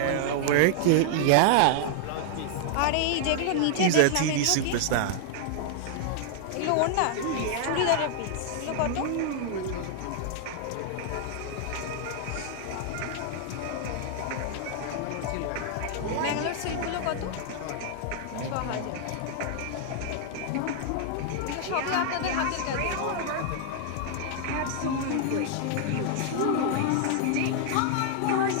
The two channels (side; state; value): both; different; correlation 0.00